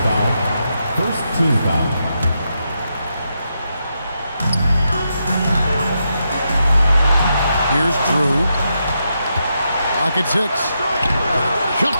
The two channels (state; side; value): inverted; both; correlation -0.83